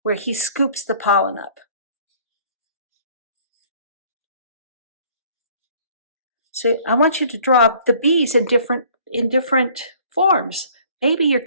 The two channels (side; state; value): both; inverted; correlation -0.55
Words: where he scoops the pollen up. So I want you to draw the bees in different forms. Maybe you're